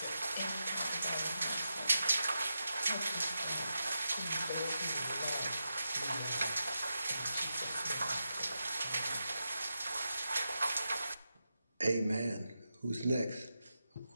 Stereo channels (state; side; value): inverted; both; correlation -0.89